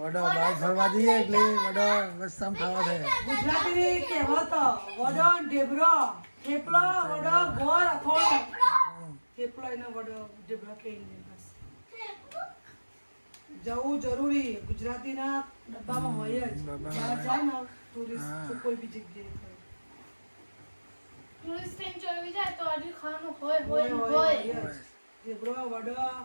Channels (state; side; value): inverted; both; correlation -1.00